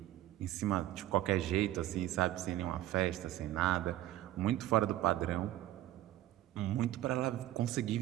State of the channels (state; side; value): quieter; left; 14.1 dB